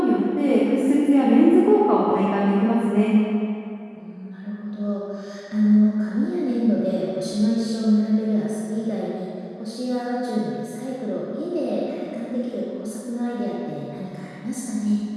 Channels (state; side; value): identical; both; correlation 1.00